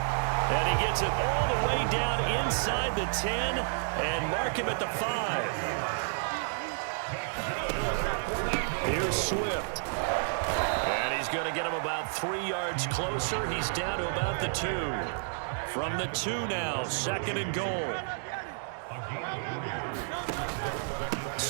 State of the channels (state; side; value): silent; left; digital silence